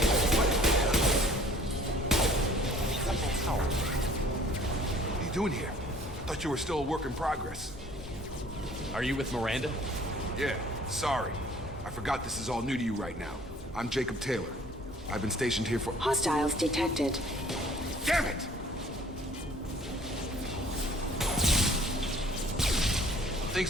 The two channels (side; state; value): both; normal; correlation 0.54